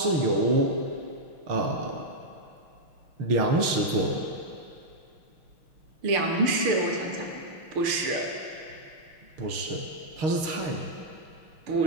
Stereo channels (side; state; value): left; late; 6.4 ms